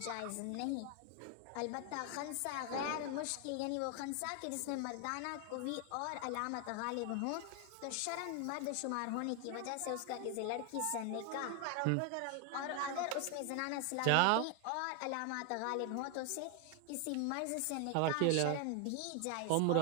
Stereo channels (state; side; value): different; both; correlation 0.01